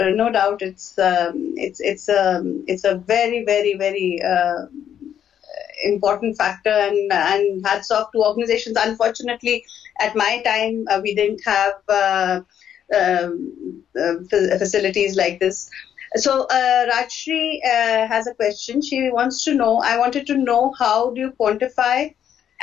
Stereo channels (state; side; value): quieter; right; 9.5 dB